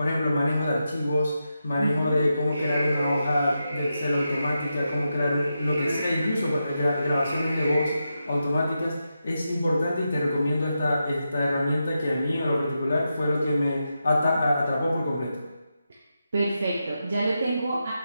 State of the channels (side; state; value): both; inverted; correlation -0.87